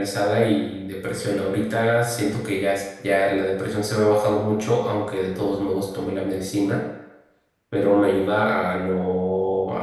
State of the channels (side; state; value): both; identical; correlation 1.00